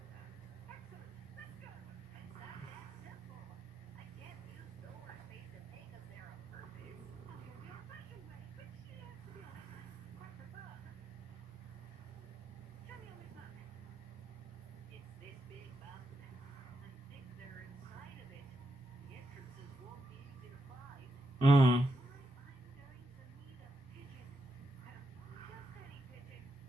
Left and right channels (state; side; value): normal; both; correlation 0.83